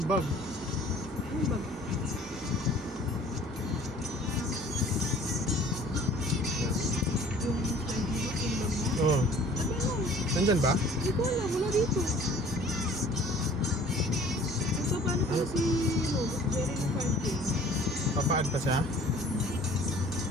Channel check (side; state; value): both; normal; correlation 0.51